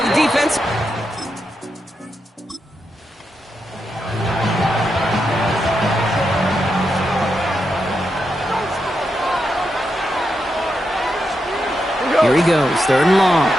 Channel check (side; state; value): both; normal; correlation 0.85